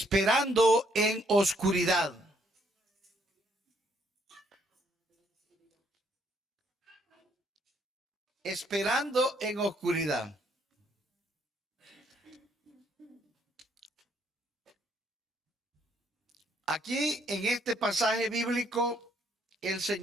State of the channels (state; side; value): normal; both; correlation 0.69